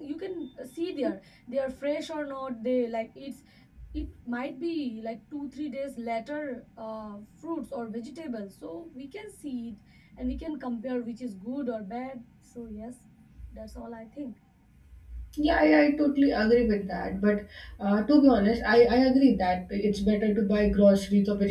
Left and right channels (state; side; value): identical; both; correlation 1.00